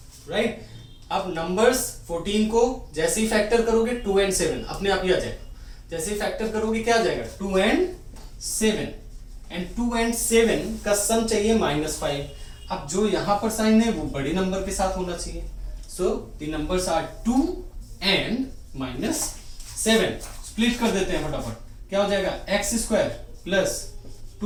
राइट। अब नंबर्स 14 को जैसे ही फैक्टर करोगे 2 and 7 अपने आप ही आ जाएगा। जैसे ही फैक्टर करोगे क्या आ जाएगा, 2 and 7, एंड 2 and 7 का सम चाहिए -5। अब जो यहां पर साइन है वो बड़े नंबर के साथ होना चाहिए, so the numbers are 2 and -7। Split कर देते हैं फटाफट, क्या हो जाएगा, x² plus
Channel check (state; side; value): identical; both; correlation 1.00